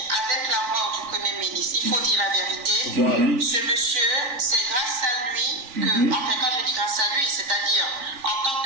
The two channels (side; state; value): left; late; 3.5 ms